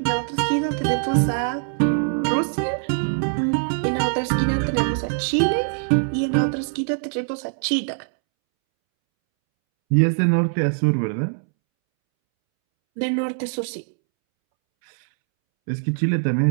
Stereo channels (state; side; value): silent; left; 64 dB below the other